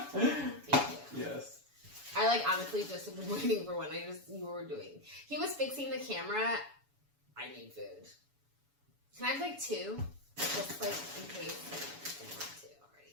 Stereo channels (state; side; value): late; left; 7.1 ms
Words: Thank you. Yes. I like honestly just have been waiting for one. You were doing. He was fixing the camera. I need food. Can I have like two? Just like in case I didn't want to